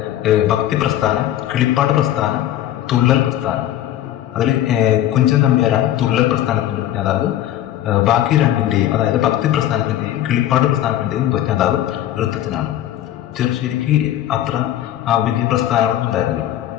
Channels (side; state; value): right; quieter; 12.4 dB